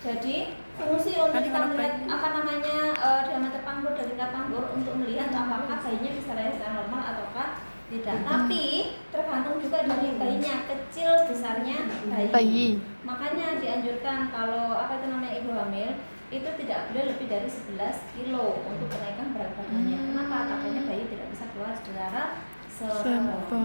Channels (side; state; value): both; inverted; correlation -1.00